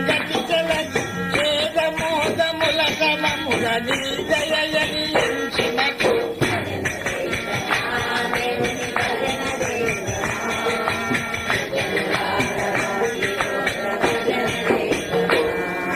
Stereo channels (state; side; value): identical; both; correlation 1.00